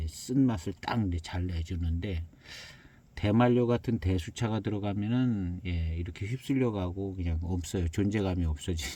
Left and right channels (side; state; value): both; identical; correlation 1.00